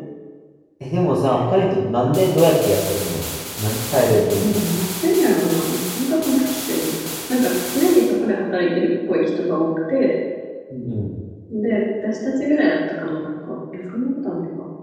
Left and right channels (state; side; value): identical; both; correlation 1.00